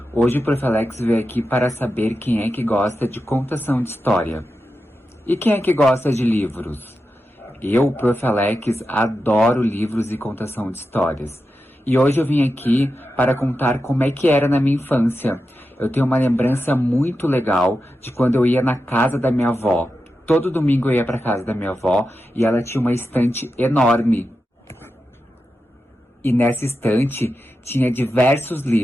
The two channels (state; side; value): normal; both; correlation 0.90